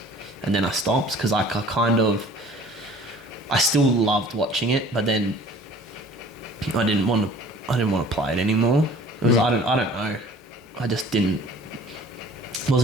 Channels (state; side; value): normal; both; correlation 0.49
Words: and then I stopped because I kind of I still loved watching it, but then I didn't want to play it anymore. It was I don't know. I just